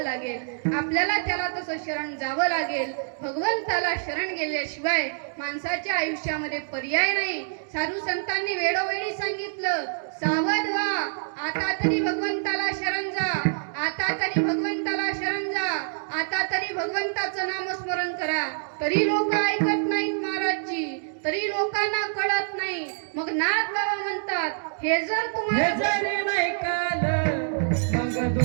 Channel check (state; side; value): silent; left; digital silence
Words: लागेल, आपल्याला त्याला तसं शरण जावं लागेल. भगवंताला शरण गेल्याशिवाय माणसाच्या आयुष्यामध्ये पर्याय नाही. साधू संतांनी वेळोवेळी सांगितलं, सावध व्हा, आता तरी भगवंताला शरण जा, आता तरी भगवंताला शरण जा, आता तरी भगवंताचं नामस्मरण करा. तरी लोक ऐकत नाहीत महाराजजी, तरी लोकांना कळत नाही. मग नाथ बाबा म्हणतात, हे जर तुम्हाला जरी नाही काल मग